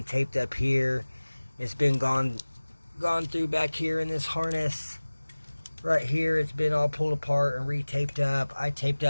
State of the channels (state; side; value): inverted; both; correlation -1.00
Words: taped up here. It's been gone through back here in this harness. Right here, it's been all pulled apart and re-taped up. I taped